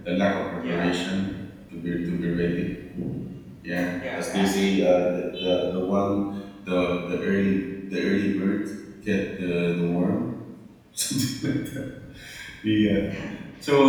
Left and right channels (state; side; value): identical; both; correlation 1.00